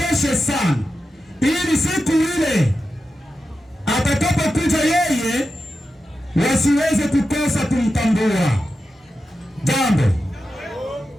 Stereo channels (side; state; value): both; normal; correlation 0.90